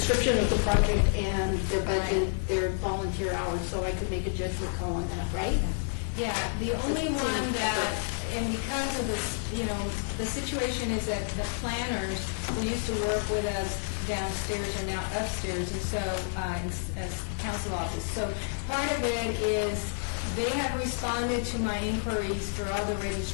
of the project and their budget, their volunteer hours, so I could make a judgment call on that, right? Yeah, the only one that, and because of this, the situation is that the planners who used to work with us downstairs are now upstairs, and so, as council office. So part of it is they have responded to my inquiries for all the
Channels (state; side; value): silent; right; 56 dB below the other